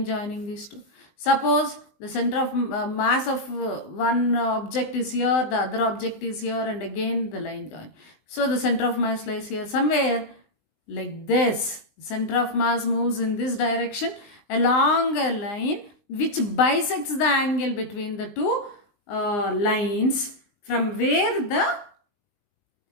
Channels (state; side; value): late; right; 20 ms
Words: joining these two. Suppose the center of mass of one object is here, the other object is here, and again the line join. So the center of mass lies here somewhere. Like this, center of mass moves in this direction along a line which bisects the angle between the two lines from where the